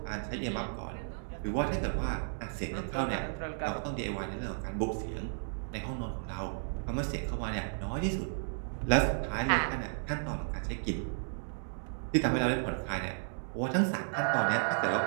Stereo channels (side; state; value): left; silent; digital silence